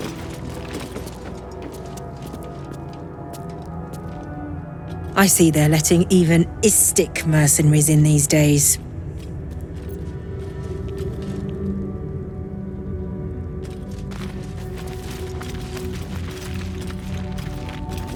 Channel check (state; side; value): identical; both; correlation 1.00